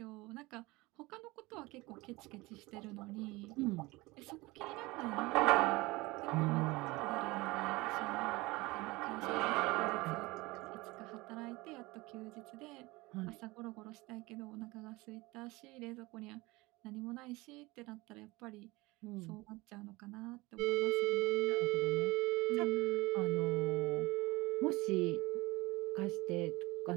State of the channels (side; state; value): left; quieter; 22.0 dB